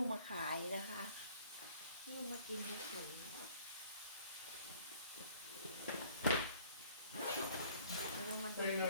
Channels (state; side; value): inverted; both; correlation -0.56